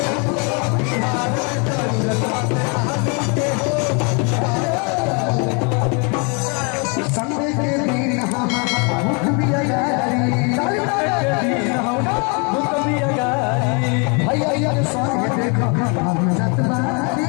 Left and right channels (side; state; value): right; quieter; 34.2 dB